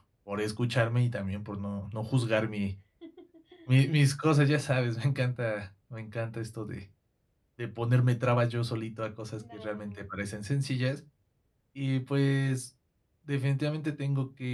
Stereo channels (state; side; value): identical; both; correlation 1.00